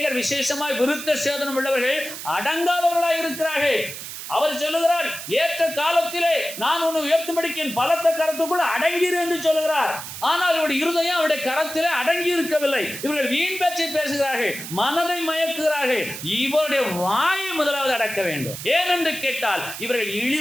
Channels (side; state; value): right; noise; hiss, 9 dB below the sound